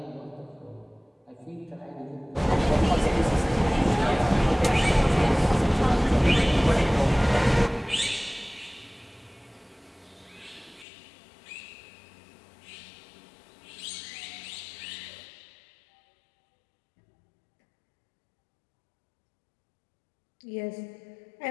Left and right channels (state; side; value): drops out; right; at 10.9 s